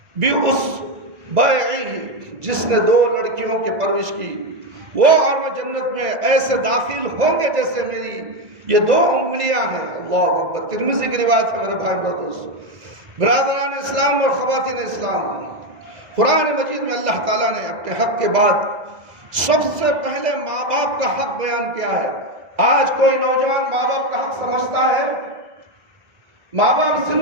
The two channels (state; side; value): late; left; 2.0 ms